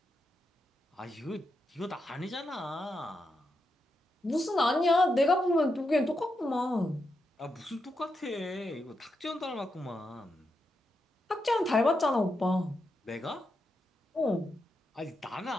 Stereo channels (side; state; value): both; normal; correlation 0.85